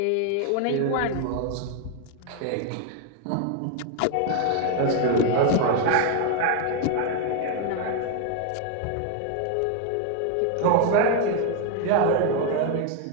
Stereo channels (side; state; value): both; different; correlation 0.00